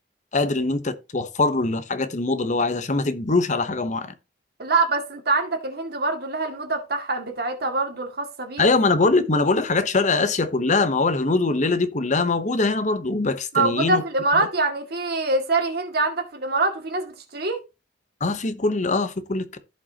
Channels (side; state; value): both; normal; correlation 0.04